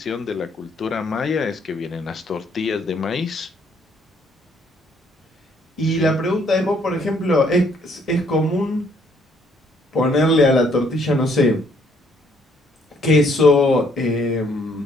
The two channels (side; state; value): both; normal; correlation 0.67